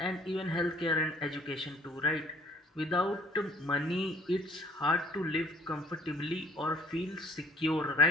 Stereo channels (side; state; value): both; normal; correlation 0.56